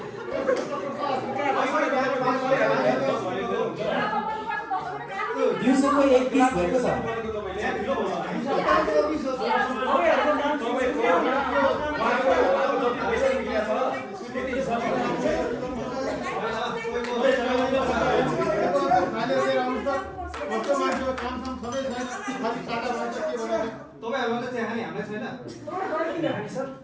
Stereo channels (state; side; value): identical; both; correlation 1.00